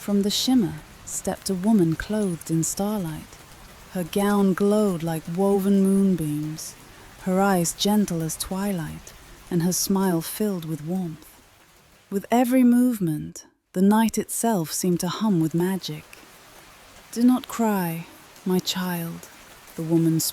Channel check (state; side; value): identical; both; correlation 1.00